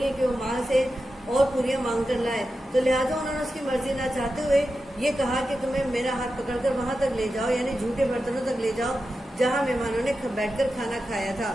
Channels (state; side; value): normal; both; correlation 0.91